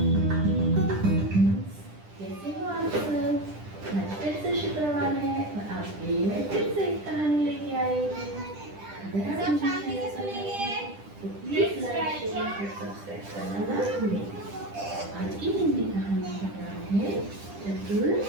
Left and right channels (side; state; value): left; late; 10 ms